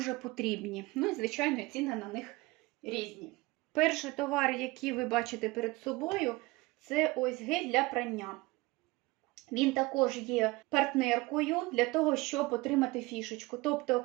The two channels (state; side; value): quieter; left; 22.3 dB